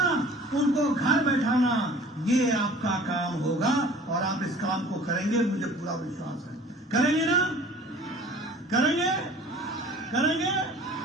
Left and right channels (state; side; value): normal; both; correlation 0.47